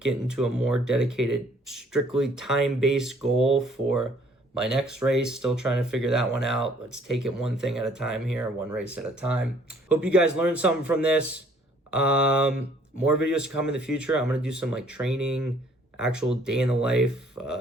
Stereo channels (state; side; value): normal; both; correlation 0.60